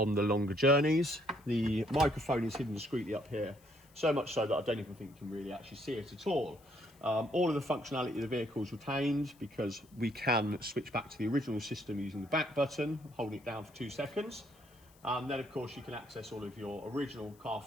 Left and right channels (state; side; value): noise; left; hiss, 29 dB below the sound